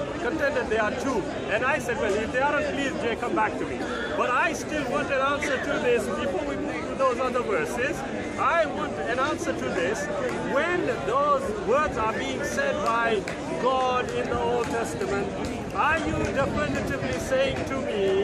contended there are two, and I said, well, if they aren't, please, Jay, come back to me. But I still want an answer to this before we move to those other verses. I want an answer to this. When those words are being said by God in the Old Testament, are you definitively saying to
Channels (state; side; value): identical; both; correlation 1.00